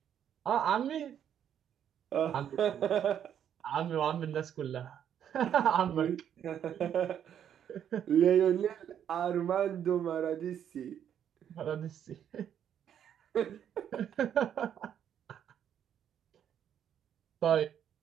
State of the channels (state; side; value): quieter; left; 9.4 dB